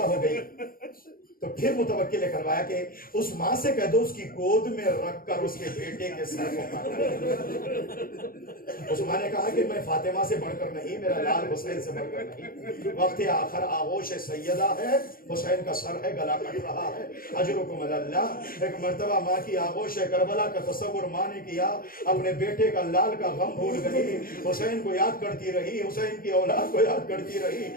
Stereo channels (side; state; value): right; late; 0.42 ms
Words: ہو گئی تو پھر متوکل نے کروایا کہ اس ماں سے کہہ دو اس کی گود میں رکھ کر اس کے بیٹے کے سر کو کاٹو. اس ماں نے کہا کہ میں فاطمہ سے بڑھ کر نہیں، میرا لال حسین سے بڑھ کر نہیں. وقت آخر آغوش سیدہ ہے، حسین کا سر ہے، گلا کٹ رہا ہے. اجرکم اللہ. ایک مرتبہ ماں کی آغوش کربلا کا تصور ماں نے کیا، اپنے بیٹے کا لال کا غم بھول گئی، حسین کو یاد کرتی رہی، حسین کی اولاد کو یاد کرتی رہی.